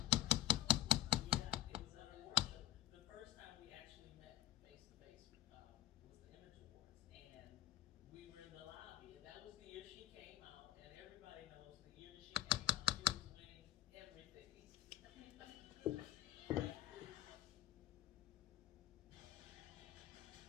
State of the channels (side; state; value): right; quieter; 14.0 dB